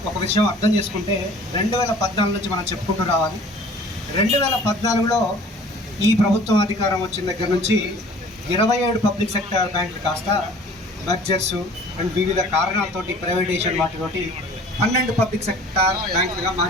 ఒక విషయం అర్థం చేసుకుంటే 2014 నుంచి మనం చెప్పుకుంటూ రావాలి. 2014లో ఈ ప్రభుత్వం అధికారం వచ్చిన దగ్గర నుంచి 27 పబ్లిక్ సెక్టర్ బ్యాంకులు కాస్త మర్జర్స్ అండ్ వివిధ కారణాలతోటి ప్రైవేటైజేషన్ వాటితోటి 12 పబ్లిక్ సెక్టర్ బ్యాంకులుగా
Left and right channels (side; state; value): both; normal; correlation 0.49